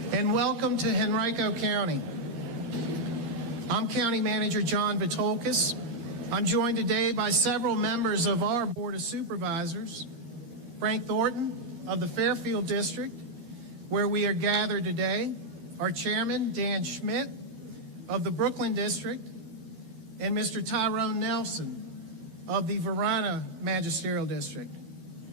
and welcome to Henrico County. I'm County Manager John Vitolkis. I'm joined today by several members of our Board of Supervisors, Frank Thornton of the Fairfield District, where we are gathered today, our Chairman, Dan Schmidt, of the Brooklyn District, and Mr. Tyrone Nelson of the Varina Magisterial District.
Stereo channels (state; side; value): late; left; 13 ms